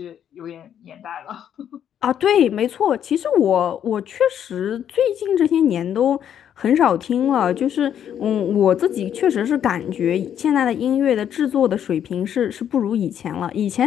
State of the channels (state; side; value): quieter; right; 9.5 dB